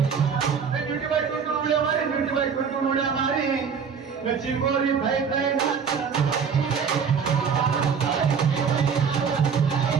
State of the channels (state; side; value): quieter; left; 6.4 dB